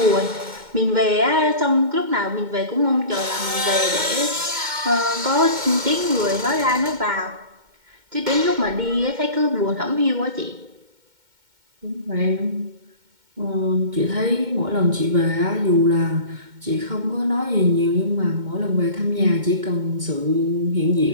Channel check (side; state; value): left; late; 2.1 ms